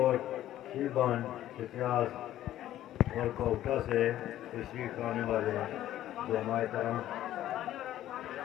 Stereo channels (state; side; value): quieter; right; 13.0 dB